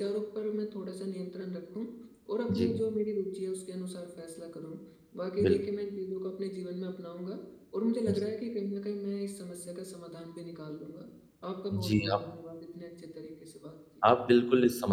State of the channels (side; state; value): both; identical; correlation 1.00